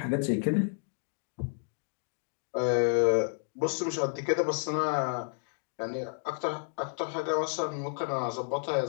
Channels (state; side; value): silent; right; digital silence